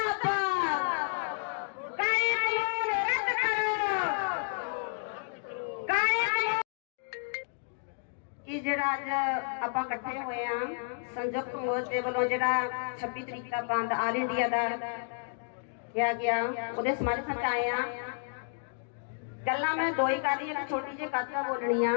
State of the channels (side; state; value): right; silent; digital silence